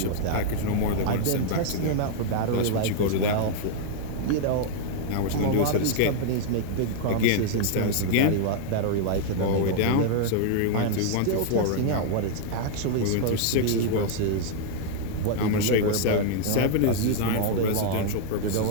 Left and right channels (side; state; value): both; different; correlation 0.00